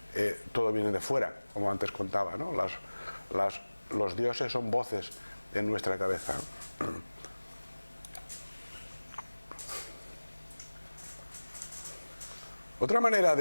todo viene de fuera, como antes contaba, ¿no? Los dioses son voces en nuestra cabeza. Otra manera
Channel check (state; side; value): inverted; both; correlation -1.00